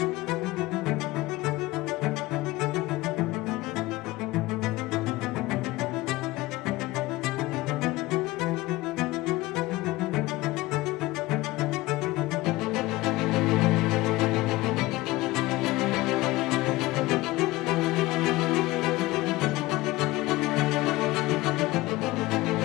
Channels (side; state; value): right; quieter; 19.4 dB